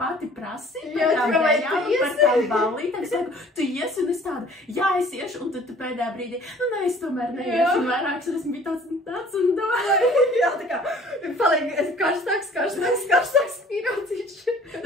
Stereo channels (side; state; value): both; normal; correlation 0.52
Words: pati prasīji par tām ballītēm. Es saku, tu iesi, un es tādu, jā, es iešu, un tad tu pēdējā brīdī, nu, ne, es tomēr neiešu, un vairākas reizes bija tāds un domāju. Jā, tā kā, paliek karstāks pīraucīši.